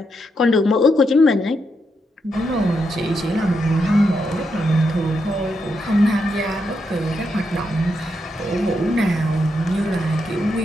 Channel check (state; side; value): normal; both; correlation 0.82